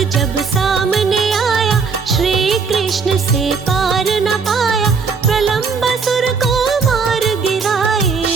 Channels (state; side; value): quieter; left; 5.2 dB